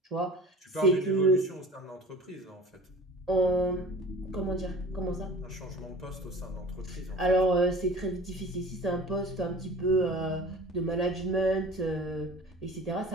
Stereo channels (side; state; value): both; normal; correlation 0.42